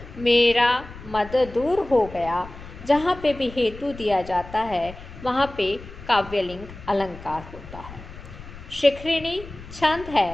मेरा मद दूर हो गया। जहाँ पे भी हेतु दिया जाता है वहाँ पे काव्यलिंग अलंकार होता है। शिखरिणी छंद है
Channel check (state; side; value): noise; left; rumble, 15 dB below the sound